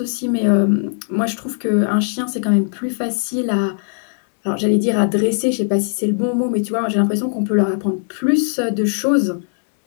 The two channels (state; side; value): silent; right; 66 dB below the other